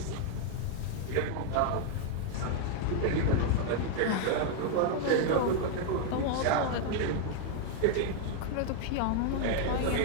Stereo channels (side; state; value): both; different; correlation 0.00